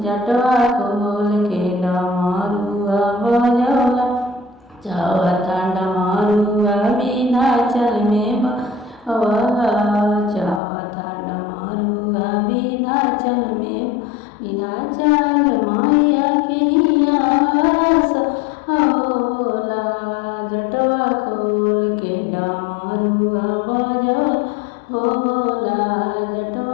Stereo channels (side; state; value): right; drops out; at 10.6 s